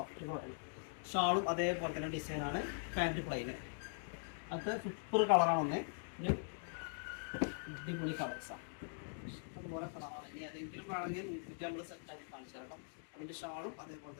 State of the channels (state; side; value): silent; right; digital silence